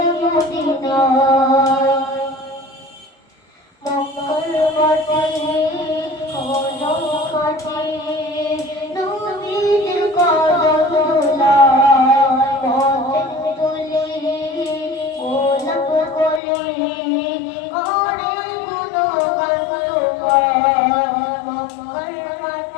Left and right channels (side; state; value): right; drops out; at 16.4 s